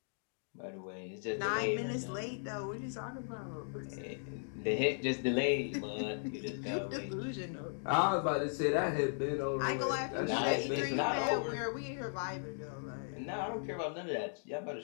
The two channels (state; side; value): silent; right; digital silence